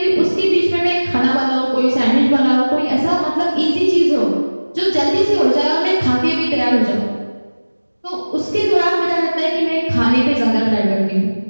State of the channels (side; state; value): both; inverted; correlation -1.00